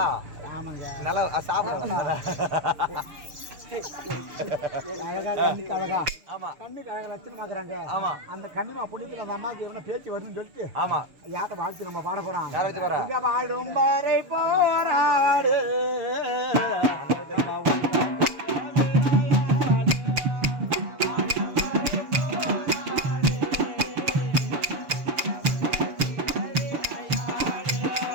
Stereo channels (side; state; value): left; late; 6.9 ms